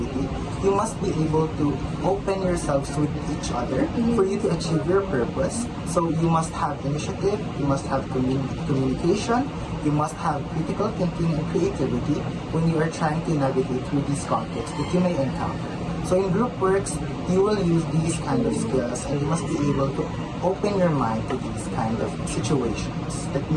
you must be able to open yourselves with each other for you to achieve your purpose. So you must have initiative, you must have communication, you must have critical thinking and creativity when you are trying to navigate through these conflicts that you may encounter. So in group works, you will use these kind of skills and you must be able to open your mind to these kind of situations that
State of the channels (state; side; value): identical; both; correlation 1.00